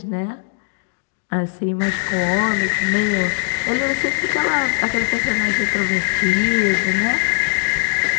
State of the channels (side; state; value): right; silent; digital silence